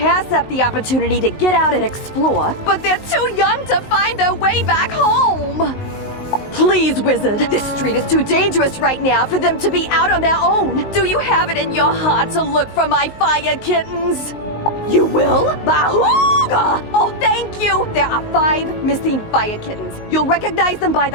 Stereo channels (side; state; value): right; late; 19 ms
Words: up the opportunity to get out and explore, but they're too young to find their way back home. Please, Wizard, this street is too dangerous right now for them to be out on their own. Do you have it in your heart to look for my fire kittens? You will? Bahooga! Oh, thank you! There are 5 missing fire kittens. You'll recognize them by